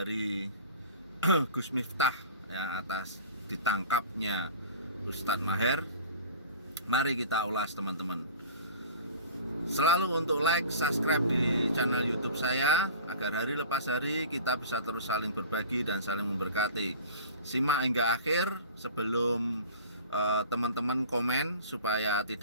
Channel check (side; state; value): both; inverted; correlation -0.40